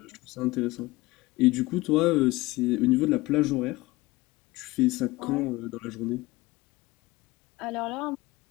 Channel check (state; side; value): quieter; right; 20.6 dB